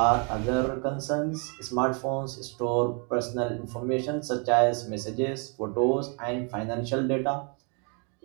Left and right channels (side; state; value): left; quieter; 36.5 dB